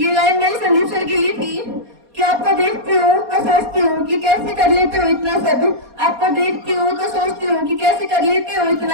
लाइन मेरे संदीप सर के लिए थी कि आपको देखती हूँ तो सोचती हूँ कि कैसे कर लेते हो इतना सब। आपको देखती हूँ तो सोचती हूँ कि कैसे कर लेते हो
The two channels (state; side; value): late; left; 4.2 ms